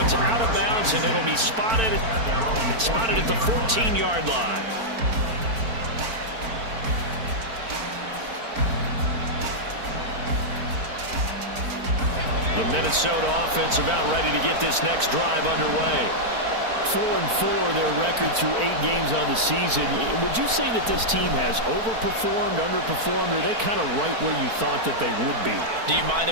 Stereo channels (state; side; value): late; left; 4.4 ms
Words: out of bounds, and it'll be spotted at the 14-yard line. The Minnesota offense about ready to get this next drive underway. 4-4 their record through 8 games on the season. Would you say that this team has overperformed, underperformed, or are they kind of right where you thought that they would be? Do you mind